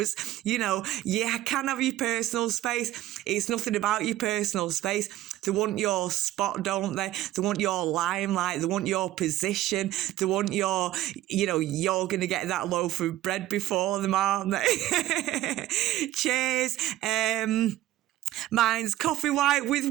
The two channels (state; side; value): quieter; left; 14.9 dB